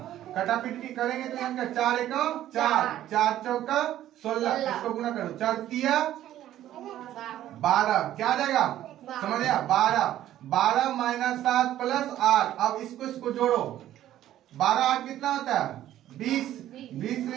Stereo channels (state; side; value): quieter; left; 12.7 dB